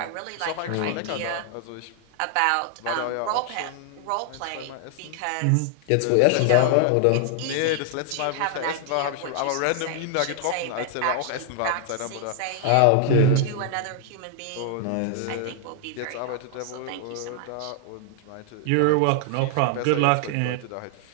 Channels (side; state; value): both; different; correlation 0.00